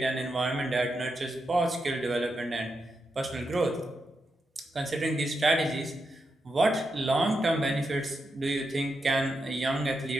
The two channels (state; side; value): normal; both; correlation 0.85